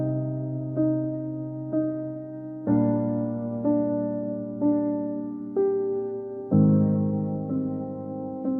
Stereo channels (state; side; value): identical; both; correlation 1.00